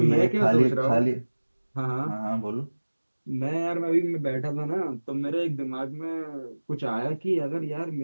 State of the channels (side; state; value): both; inverted; correlation -1.00